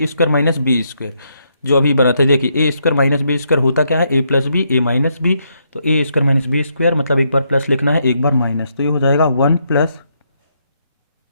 स्क्वायर माइनस बी स्क्वायर, जो अभी बना था। देखिए ए स्क्वायर माइनस बी स्क्वायर होता क्या है, ए प्लस बी ए माइनस बी, तो ए स्क्वायर माइनस बी स्क्वायर मतलब एक बार प्लस लिखना है एक बार माइनस, तो ये हो जाएगा 1 plus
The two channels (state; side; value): inverted; both; correlation -0.77